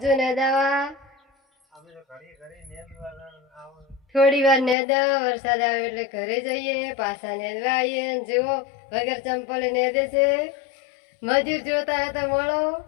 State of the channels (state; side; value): drops out; right; at 4.8 s